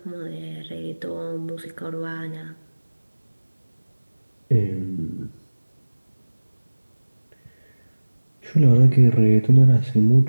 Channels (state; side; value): inverted; both; correlation -1.00